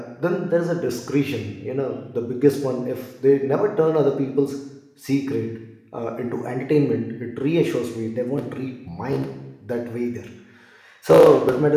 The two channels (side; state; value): both; identical; correlation 1.00